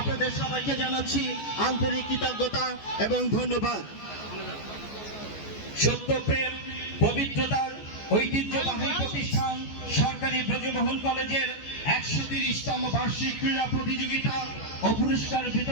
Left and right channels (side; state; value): right; late; 14 ms